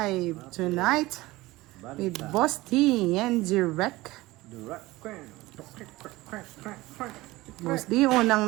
tonight with Boss T and Direct. Boss D,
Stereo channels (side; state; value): left; quieter; 19.4 dB